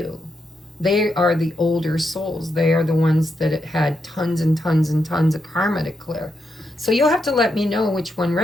They are the older souls. They are the ones that had tons and tons and tons of karma to clear. So you'll have to let me know which one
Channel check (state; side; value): normal; both; correlation 0.83